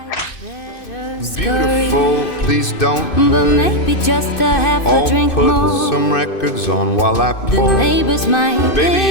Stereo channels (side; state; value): right; late; 2.6 ms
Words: better scurry. Beautiful, please don't But hurry. maybe just a half a I'll drink put more. some records on while I The pour. neighbors might Baby,